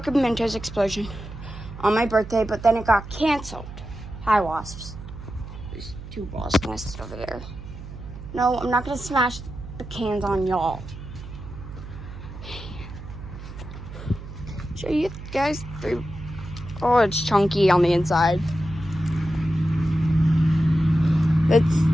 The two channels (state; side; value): noise; right; hum, 12 dB below the sound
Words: and Mentos explosion on my birthday, but then it got canceled. Hi, wasps. There's 2 wasp nests over there. No, I'm not gonna smash the cans on y'all. Show you guys 3. Oh, it's chunky on the inside. Let's